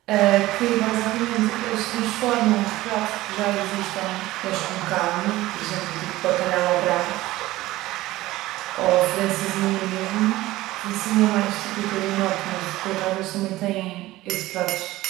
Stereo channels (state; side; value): quieter; left; 17.3 dB